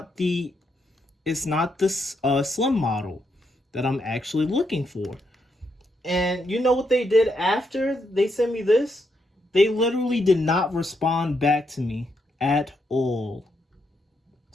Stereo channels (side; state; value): both; normal; correlation 0.79